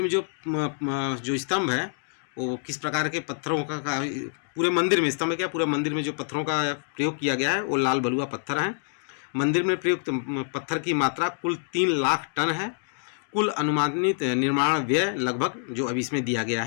में जो स्तंभ है वो किस प्रकार के पत्थरों का पूरे मंदिर में स्तंभ क्या पूरे मंदिर में जो पत्थरों का प्रयोग किया गया है वो लाल बलुआ पत्थर हैं। मंदिर में प्रयुक्त पत्थर की मात्रा कुल 3 लाख टन है। कुल अनुमानित निर्माण व्यय लगभग जो अभी इसमें दिया गया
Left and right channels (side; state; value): right; silent; 61 dB below the other